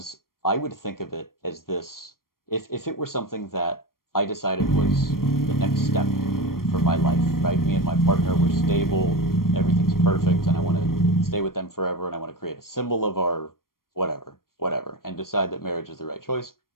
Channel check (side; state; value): right; late; 0.92 ms